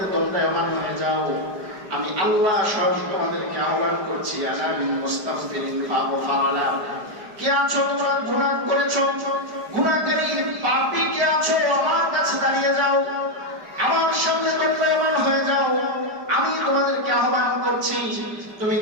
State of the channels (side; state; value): left; late; 5.0 ms